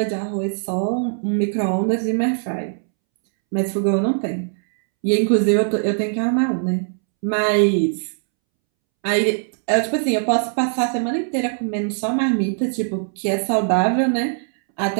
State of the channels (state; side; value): silent; left; 65 dB below the other